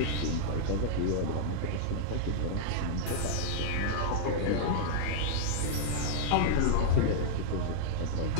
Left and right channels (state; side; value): different; both; correlation -0.01